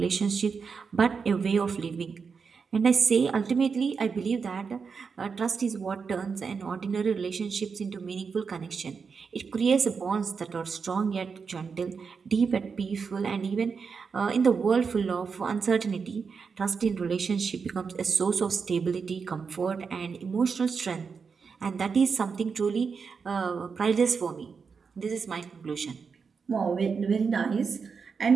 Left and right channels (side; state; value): left; quieter; 5.6 dB